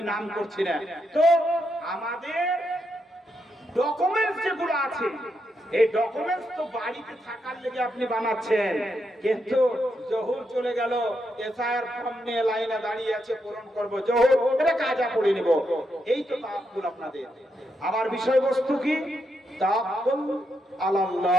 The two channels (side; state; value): both; normal; correlation 0.82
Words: নাম করছি না। তো আমাদের ডকুমেন্টস যেগুলো আছে, এই ডকুমেন্টস তো বাড়িতে থাকার লেগে আপনি বানাচ্ছেন, কিন্তু জহুর চলে গেল, এসআইআর ফর্ম নিয়ে লাইনে দাঁড়িয়ে আছে, পূরণ করব জহুর, এটা কাজা পড়ে নিব। এই তো তাওয়াক্কুল আপনাদের। আমার বিষয়বস্তু কি? তাওয়াক্কুল